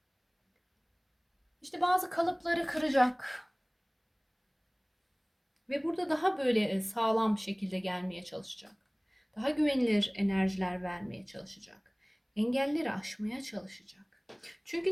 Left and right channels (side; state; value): both; identical; correlation 1.00